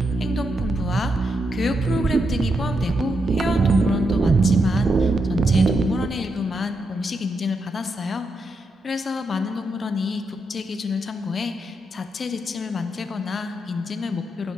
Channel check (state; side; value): normal; both; correlation 0.83